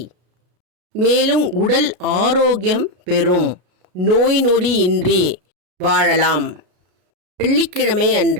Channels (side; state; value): left; late; 33 ms